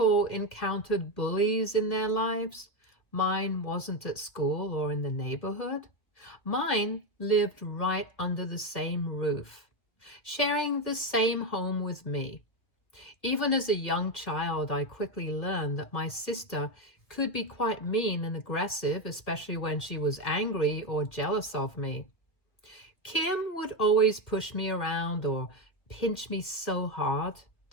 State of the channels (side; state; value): right; late; 1.6 ms